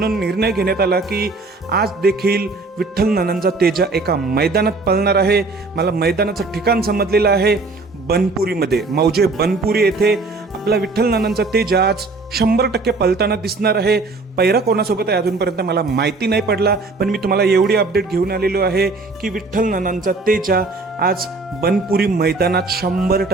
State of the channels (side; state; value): left; quieter; 3.6 dB